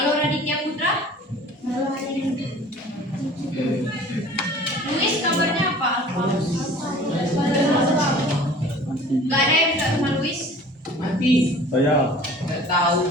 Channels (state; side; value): normal; both; correlation 0.46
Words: Raditya Putra? Luis kabarnya apa? Gak ada yang minta sama Luis? Mati. Saya. Nggak tahu.